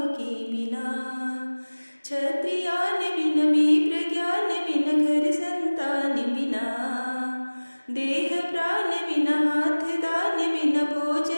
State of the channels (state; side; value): inverted; both; correlation -1.00